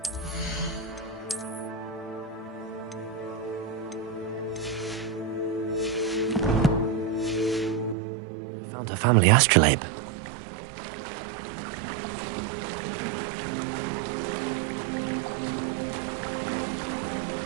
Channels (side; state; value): left; drops out; at 8.0 s